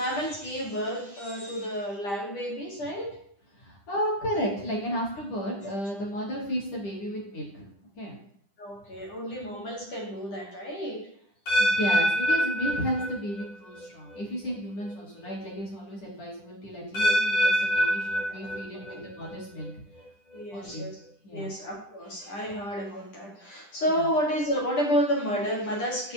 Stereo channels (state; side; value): late; right; 10 ms